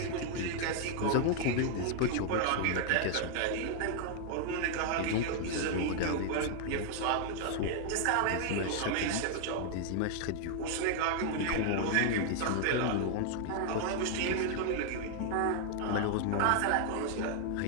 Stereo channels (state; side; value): different; both; correlation 0.00